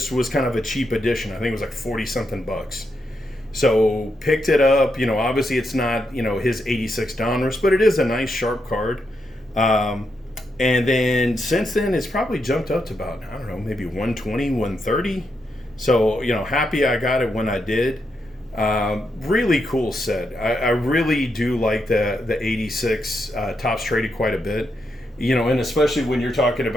was kind of a cheap edition. I think it was like 40 something bucks. So picked it up. Obviously it's not his 86 Donruss, but it is a nice sharp card. And then since then it's probably jumped up to about, I don't know, maybe 120, 130. So happy I got it when I did. Really cool set. I really do like the 86 tops traded quite a bit. And especially when you're talking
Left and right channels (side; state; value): both; normal; correlation 0.82